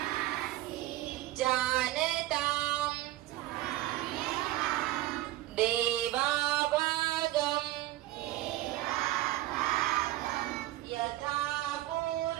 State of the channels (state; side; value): quieter; left; 16.1 dB